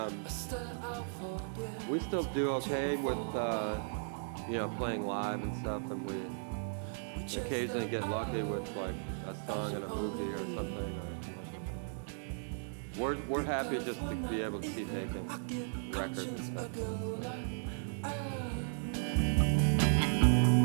We still do okay with you know, playing live and stuff, and we occasionally get lucky with a song in a movie or something, or a commercial or something. We're happy just to be able to keep making records and stuff.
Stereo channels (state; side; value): silent; left; digital silence